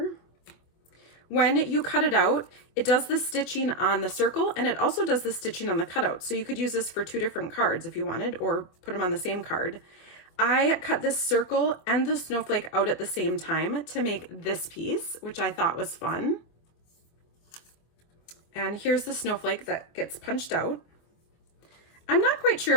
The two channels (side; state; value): right; late; 24 ms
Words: when you cut it out, it does the stitching on the circle and it also does the stitching on the cutout. So you could use this for 2 different cards if you wanted, or put them on the same card. I cut this circle and the snowflake out at the same time to make this piece, which I thought was fun. And here's the snowflake that gets punched out. I'm not quite sure